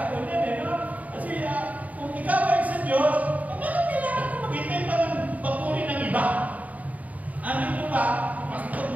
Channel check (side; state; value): left; late; 0.072 ms